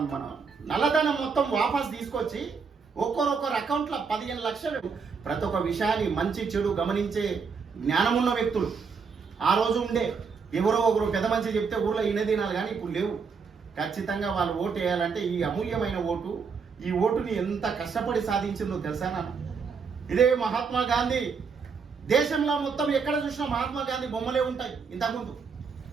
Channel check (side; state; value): left; quieter; 5.5 dB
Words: మన నల్లధనం మొత్తం వాపస్ తీసుకొచ్చి ఒక్కొక్కరు అకౌంట్లో 15 లక్షలు. ప్రతి ఒక్క విషయాన్ని మంచి చెడు గమనించే జ్ఞానమున్న వ్యక్తులు ఆ రోజు ఉండే. ఎవరో ఒకరు పెద్ద మంచి చెప్తే ఊళ్ళో ఇనదినాలు కానీ ఇప్పుడు లేవు. ఖచ్చితంగా వాళ్ళు ఓటు వేయాలంటే ఈ అమూల్యమైన ఓటు, ఈ ఓటుని ఎంత కష్టపడి సాధించిందో తెలుసా నాన్న? ఇదే మహాత్మా గాంధీ. దేశంలో మొత్తం ఎక్కడ చూసినా మహాత్మా గాంధీ బొమ్మలే ఉంటాయి. ఇంతకుముందు